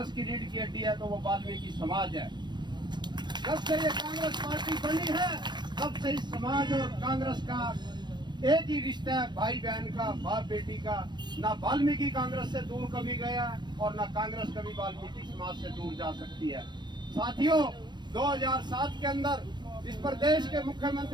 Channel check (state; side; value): late; left; 0.22 ms